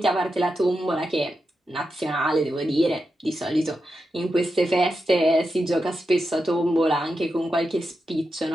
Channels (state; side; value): normal; both; correlation 0.88